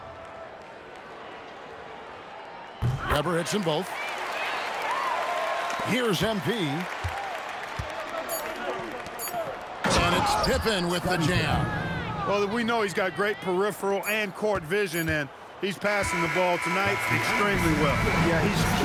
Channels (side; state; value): both; identical; correlation 1.00